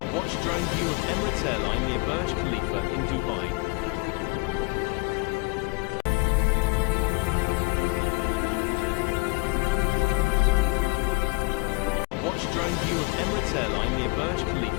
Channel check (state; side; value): quieter; right; 27.9 dB